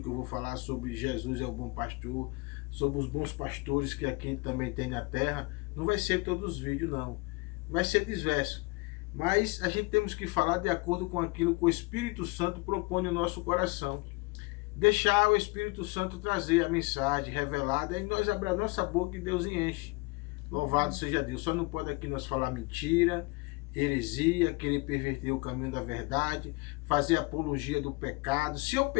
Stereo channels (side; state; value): right; quieter; 25.9 dB